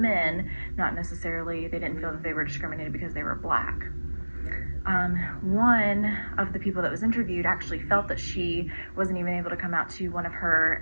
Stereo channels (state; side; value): inverted; both; correlation -1.00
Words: not necessarily, they didn't feel that they were discriminated because they were Black. One of the people that was interviewed actually felt that she wasn't even able to come out to one of her